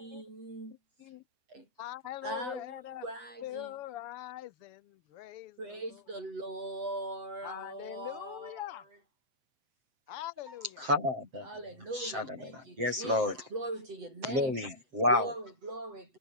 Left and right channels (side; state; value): left; late; 7.6 ms